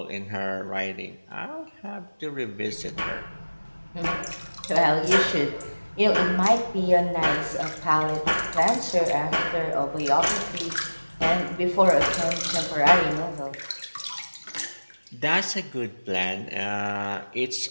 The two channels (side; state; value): both; inverted; correlation -1.00